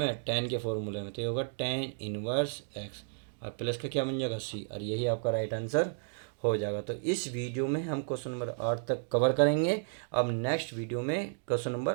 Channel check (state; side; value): silent; left; digital silence